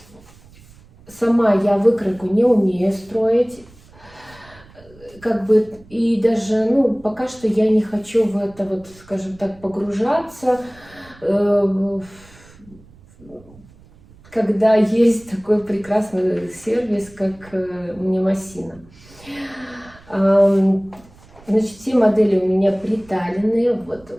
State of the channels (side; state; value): right; noise; rumble, 25 dB below the sound